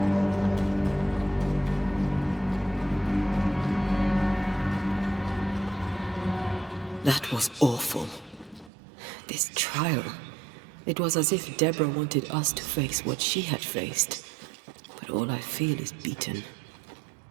That was awful. This trial. It was as if Deborah wanted us to face what she had faced. But all I feel is beaten.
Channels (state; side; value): drops out; left; at 8.7 s